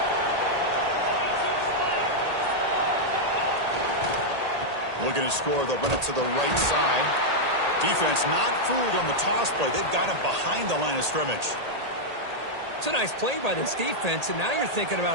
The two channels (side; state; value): left; late; 1.8 ms